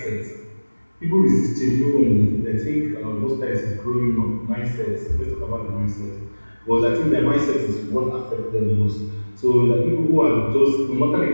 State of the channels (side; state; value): both; inverted; correlation -1.00